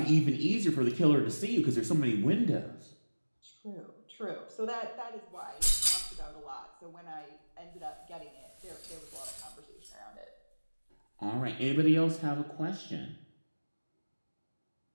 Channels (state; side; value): inverted; both; correlation -1.00